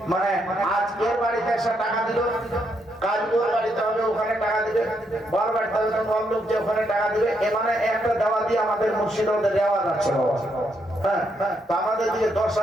মানে আজ এর বাড়িতে এসে টাকা দিল, কাল ওর বাড়িতে হবে ওখানে টাকা দিবে, বর বাড়িতে হবে বর লোক যে ওখানে টাকা দিবে। এ মানে একটা দেওয়া দিয়ে আমাদের মুর্শিদাবাদে দেওয়া যাচ্ছে বাবা। হ্যাঁ, তো আমাদের দিকে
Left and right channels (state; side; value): normal; both; correlation 0.77